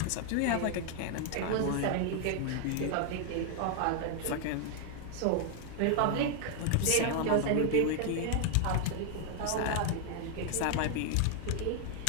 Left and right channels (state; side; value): different; both; correlation 0.00